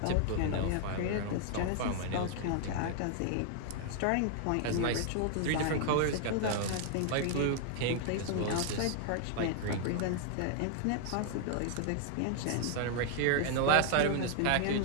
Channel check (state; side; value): different; both; correlation 0.00